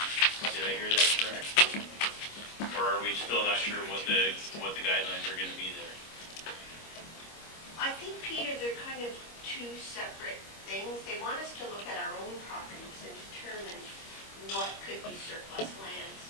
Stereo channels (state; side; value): late; right; 25 ms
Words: Did I hear that correct? Or are we still not sure what the guidelines are going to be there? I think, Peter, they're kind of two separate things. They want us to look at our own properties and determine what could be surplus lands.